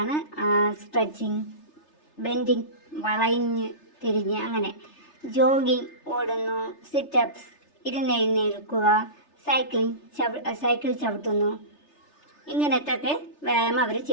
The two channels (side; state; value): right; late; 3.3 ms